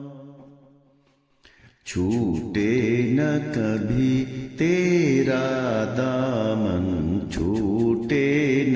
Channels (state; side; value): identical; both; correlation 1.00